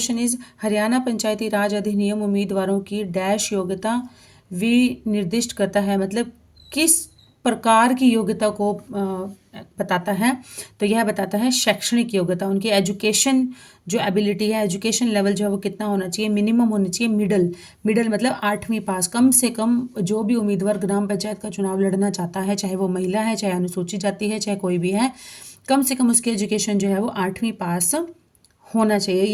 इज, हरियाणा पंचायती राज अधिनियम उम्मीदवारों की डैश योग्यता विनिर्दिष्ट करता है, मतलब किस प्रकार की योग्यता को बताता है? तो यह बताता है शैक्षणिक योग्यता, उनकी एजुकेशन जो एबिलिटी है, एजुकेशन लेवल जो है वो कितना होना चाहिए? मिनिमम होनी चाहिए मिडल मतलब 8वीं पास। कम से कम जो भी उम्मीदवार ग्राम पंचायत का चुनाव लड़ना चाहता है, चाहे वो महिला है, चाहे अनुसूचित जाति है, चाहे कोई भी है, कम से कम उसकी एजुकेशन जो है वो 8वीं पास होना चाहिए,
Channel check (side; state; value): both; identical; correlation 1.00